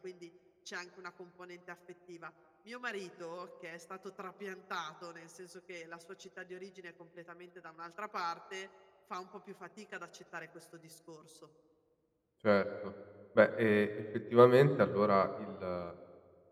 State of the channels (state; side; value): identical; both; correlation 1.00